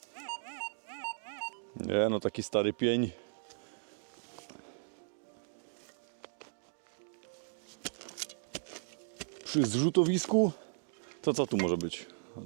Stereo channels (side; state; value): left; silent; digital silence